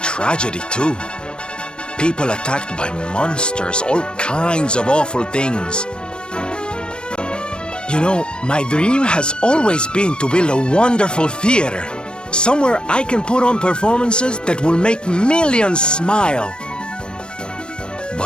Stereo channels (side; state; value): right; late; 0.053 ms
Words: too. People attacked by monsters, all kinds of awful things. You know, my dream has always been to build a wonderful theater. Somewhere I can put on performances that will make millions smile.